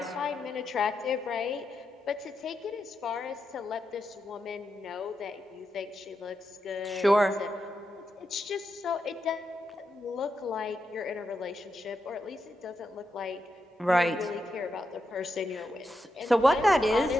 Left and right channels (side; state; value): both; normal; correlation 0.86